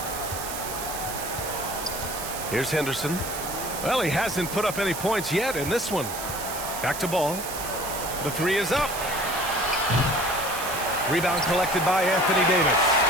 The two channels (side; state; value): right; noise; hiss, 8 dB below the sound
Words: Here's Henderson. Well, he hasn't put up any points yet in this one. Back to ball. The three is up. Rebound collected by Anthony Davis.